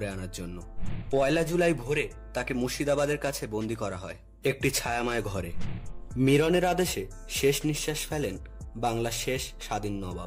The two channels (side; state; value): both; identical; correlation 1.00